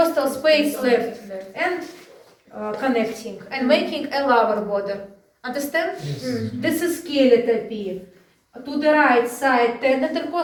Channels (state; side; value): identical; both; correlation 1.00